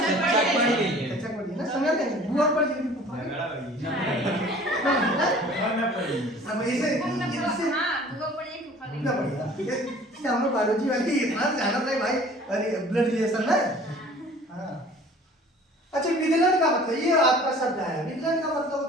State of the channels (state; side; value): normal; both; correlation 0.48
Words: पढ़ी ना, समझ नहीं बुआ पढ़ी है, अब ऐसे ना बढ़िया, ठीक है। हम लोग बायोलॉजी वाली इतना जाना था भाई, अरे ब्लड रिलेशन ना, हाँ। अच्छा विधलन का मतलब, ये आपका शब्द है, विधलन का मतलब